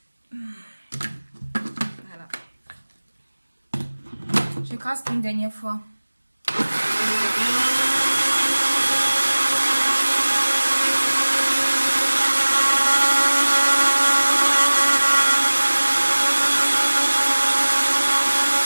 Voilà. J'écrase une dernière fois.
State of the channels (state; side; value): inverted; both; correlation -1.00